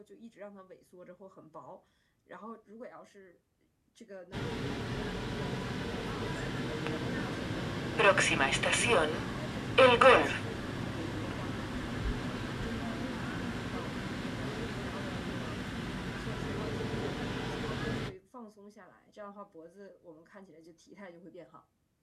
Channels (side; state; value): both; identical; correlation 1.00